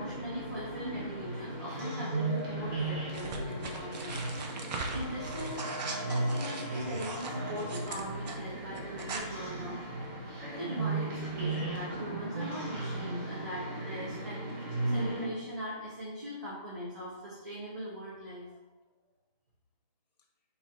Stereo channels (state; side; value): inverted; both; correlation -0.52